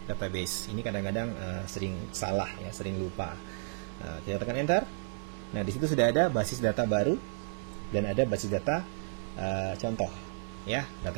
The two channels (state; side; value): silent; left; 56 dB below the other